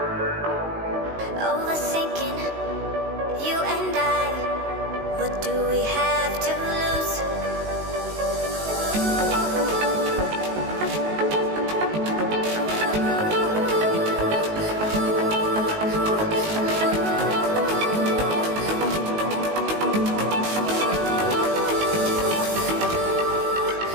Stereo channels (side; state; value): left; late; 19 ms